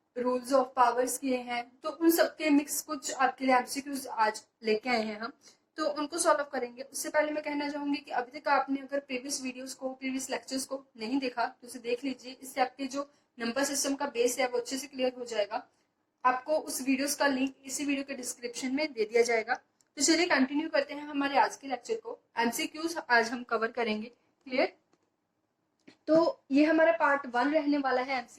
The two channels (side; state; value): both; identical; correlation 1.00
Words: रूल्स ऑफ पावर्स किए हैं। तो उन सबके मिक्स कुछ आपके लिए एमसीक्यूज आज लेके आए हैं हम, तो उनको सॉल्व करेंगे। उससे पहले मैं कहना चाहूंगी कि अभी तक आपने अगर प्रीवियस वीडियोस को, प्रीवियस लेक्चर्स को नहीं देखा तो उसे देख लीजिए। इससे आपके जो नंबर सिस्टम का बेस है वो अच्छे से क्लियर हो जाएगा। आपको उस वीडियोस का लिंक इसी वीडियो के डिस्क्रिप्शन में दे दिया जाएगा। तो चलिए कंटिन्यू करते हैं हमारे आज के लेक्चर को। एमसीक्यूज आज हम कवर करेंगे। क्लियर? तो ये हमारा पार्ट 1 रहने वाला है